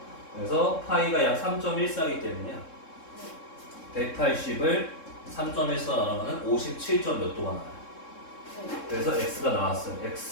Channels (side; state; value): right; late; 3.7 ms